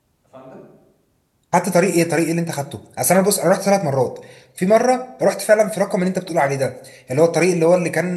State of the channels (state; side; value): identical; both; correlation 1.00